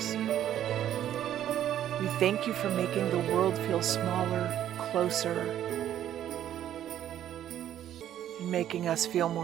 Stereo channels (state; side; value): quieter; left; 11.2 dB